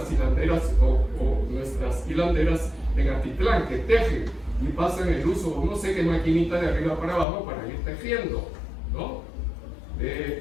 hilanderas o nuestras hilanderas en Atitlán, que tejen y pasan el uso, no sé qué maquinita de arriba para abajo para ir tejiendo, ¿no?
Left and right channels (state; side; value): drops out; right; at 7.2 s